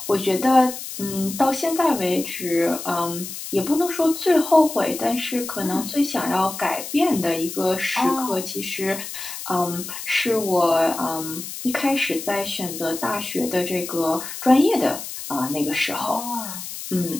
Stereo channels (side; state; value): left; noise; hiss, 9 dB below the sound